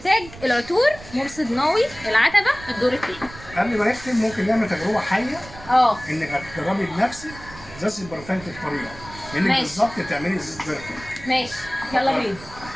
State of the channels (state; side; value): noise; right; rumble, 17 dB below the sound